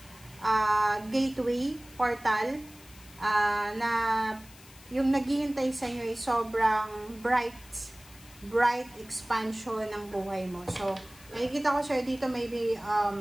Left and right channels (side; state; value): left; noise; hiss, 22 dB below the sound